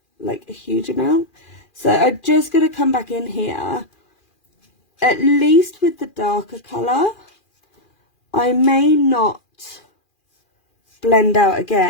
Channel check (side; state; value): right; late; 2.4 ms